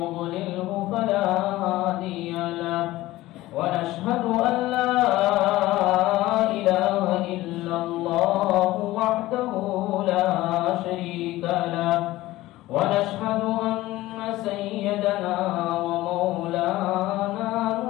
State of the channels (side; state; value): right; quieter; 17.2 dB